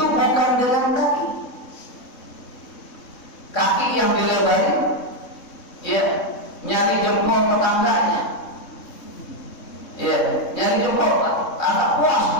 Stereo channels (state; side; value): late; right; 3.7 ms